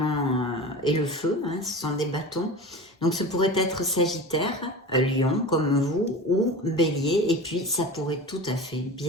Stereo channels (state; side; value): normal; both; correlation 0.33